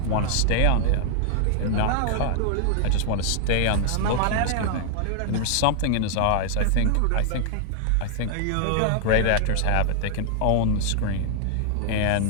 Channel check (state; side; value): different; both; correlation -0.01